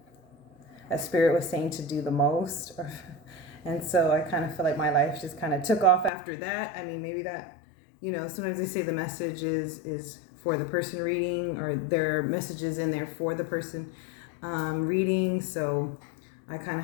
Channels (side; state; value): right; drops out; at 6.1 s